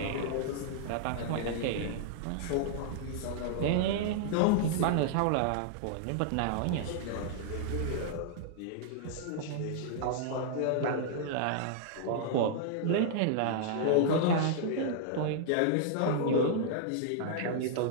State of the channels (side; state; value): both; different; correlation -0.01